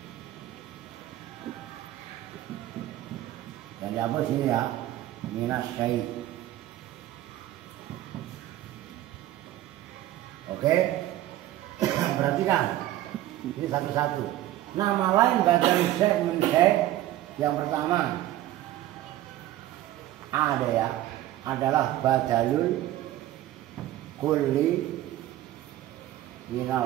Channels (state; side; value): quieter; left; 14.2 dB